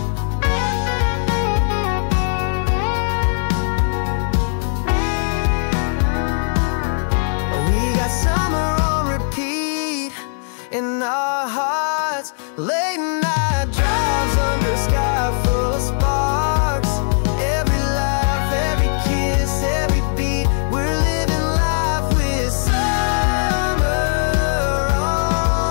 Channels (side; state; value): right; silent; 66 dB below the other